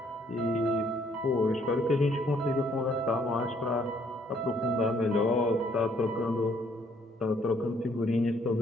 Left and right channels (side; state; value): both; normal; correlation 0.66